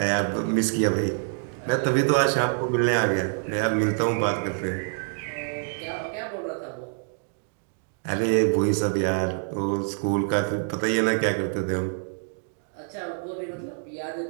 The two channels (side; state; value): left; silent; digital silence